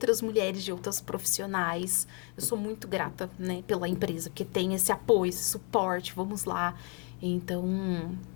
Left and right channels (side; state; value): right; quieter; 34.3 dB